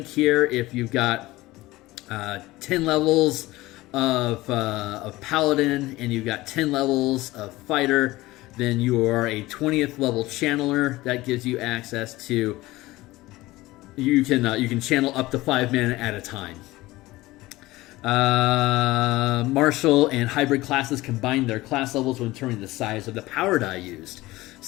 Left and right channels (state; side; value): quieter; right; 18.8 dB